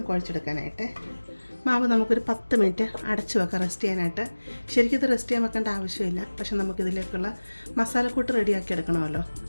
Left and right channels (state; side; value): inverted; both; correlation -1.00